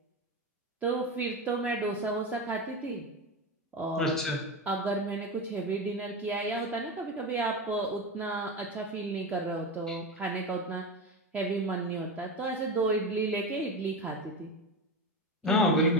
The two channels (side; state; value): both; normal; correlation 0.21